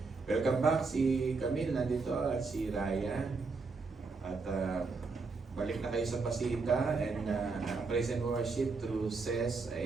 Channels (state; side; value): quieter; left; 4.2 dB